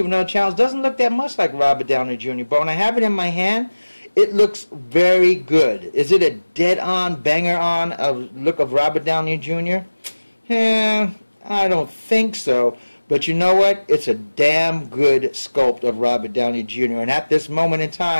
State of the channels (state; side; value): inverted; both; correlation -1.00